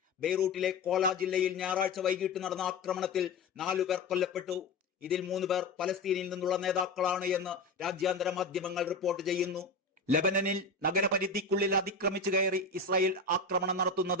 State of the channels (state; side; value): quieter; right; 3.4 dB